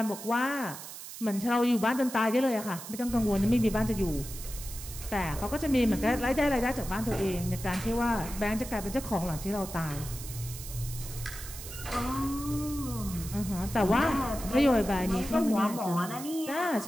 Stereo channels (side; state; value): right; noise; hiss, 11 dB below the sound